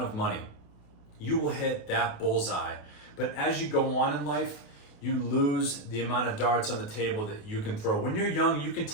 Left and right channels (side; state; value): right; late; 28 ms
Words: of money. You will hit that bullseye. But as you go on in life, you lose the amount of darts on the table that you can throw. When you're young, you can